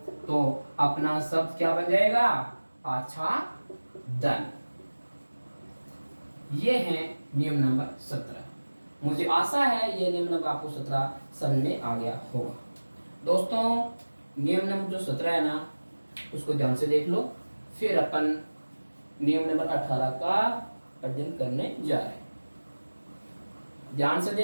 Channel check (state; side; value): inverted; both; correlation -1.00